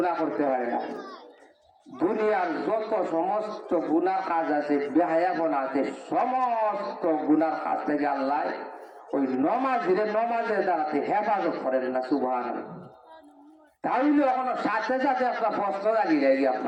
করতে পারে না। দুনিয়ার যত সমস্ত গুনাহ কাজ আছে, বেহায়াপনা আছে, সমস্ত গুনাহ কাজ থেকে আল্লাহ ওই নমাজের দ্বারাতে হেফাজত করেন না। সুবহানাল্লাহ। তাহলে এখন সাথে সাথে আপনার প্রশ্ন রাখি যায় কি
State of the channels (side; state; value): both; identical; correlation 1.00